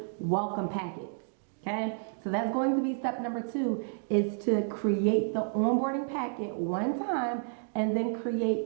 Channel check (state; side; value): silent; left; digital silence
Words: welcome packets. Okay, so that's going to be step number two, is to create the onboarding packet one time and then